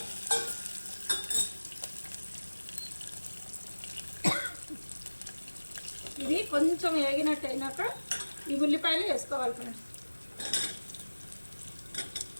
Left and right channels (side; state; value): both; inverted; correlation -1.00